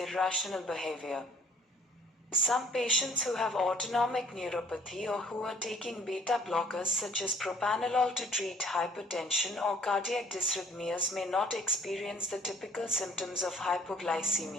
behavior. Some patients who have autonomic neuropathy or who are taking beta blockers such as propranolol to treat hypertension or cardiac dysrhythmias may not experience the typical symptoms of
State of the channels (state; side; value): normal; both; correlation 0.57